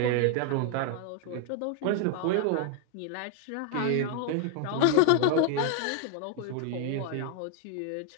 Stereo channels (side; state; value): both; different; correlation 0.00